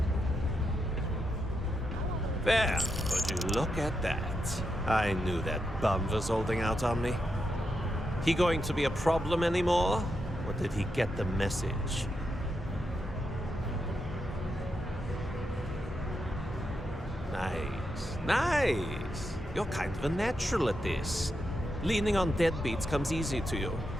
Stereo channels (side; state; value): both; normal; correlation 0.84